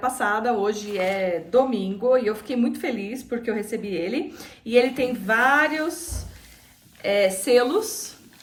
hoje é domingo, e eu fiquei muito feliz porque eu recebi ele. E ele tem vários selos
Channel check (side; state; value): both; identical; correlation 1.00